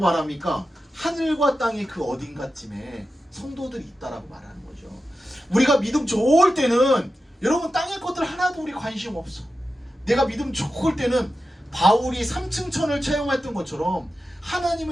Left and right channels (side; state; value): both; normal; correlation 0.92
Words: 하늘과 땅의 그 어딘가쯤에 성도들이 있다라고 말하는 거죠. 우리가 믿음 좋을 때는 여러분 땅의 것들 하나도 우리 관심 없어. 내가 믿음 좋을 때는 바울이 3층 천을 체험했던 것처럼